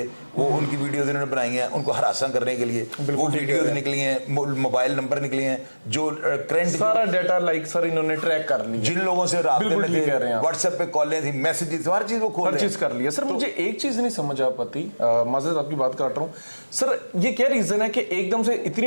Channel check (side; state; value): both; inverted; correlation -1.00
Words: वो उनकी वीडियोज इन्होंने बनाई हैं उनको हरासा करने के लिए। वो वीडियोज निकली हैं, मोबाइल नंबर निकले हैं, जो करंट सारा डाटा लाइक सर इन्होंने ट्रैक कर लिया, जिन लोगों से राब्ते में थे, व्हाट्सएप पे कॉलें थी, मैसेजेस, हर चीज वो खोल हर चीज कर लिया। सर मुझे एक चीज नहीं समझ आ पाती, माजरत आपकी बात काट रहा हूँ सर, ये क्या रीजन है कि एकदम से